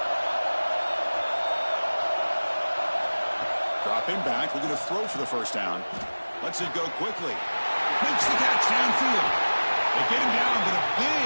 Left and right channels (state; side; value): inverted; both; correlation -1.00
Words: Dropping back, looking to throw for the first down. Lets it go quickly. Makes the catch downfield. They get him down, but a